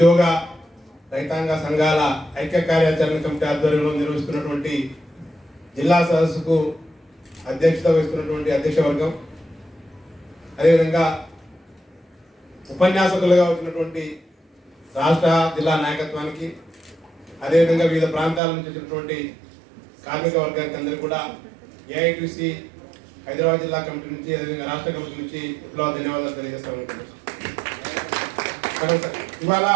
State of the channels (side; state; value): left; drops out; at 18.4 s